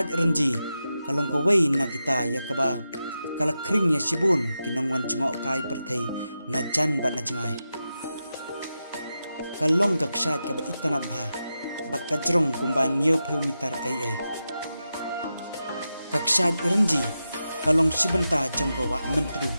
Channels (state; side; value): inverted; both; correlation -0.90